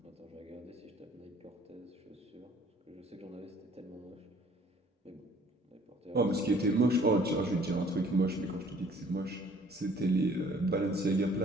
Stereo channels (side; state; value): both; normal; correlation 0.56